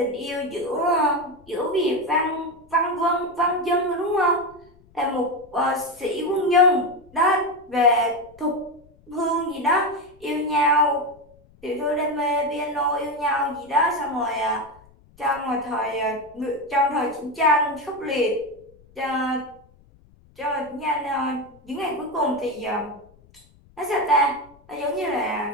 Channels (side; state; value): left; noise; rumble, 28 dB below the sound